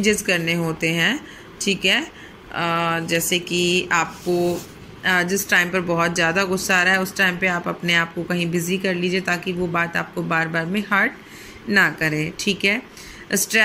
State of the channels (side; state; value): both; identical; correlation 1.00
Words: करने होते हैं। ठीक है। जैसे कि आपको जिस टाइम पर बहुत ज़्यादा गुस्सा आ रहा है उस टाइम पे आप अपने आप को कहीं बिजी कर लीजिए ताकि वो बात आपको बार बार में हर्ट ना करे। ठीक है।